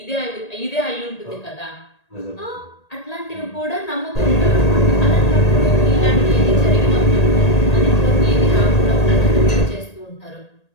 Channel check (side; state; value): right; late; 1.8 ms